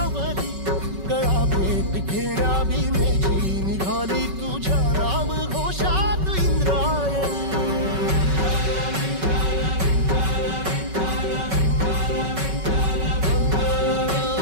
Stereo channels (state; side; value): late; left; 5.3 ms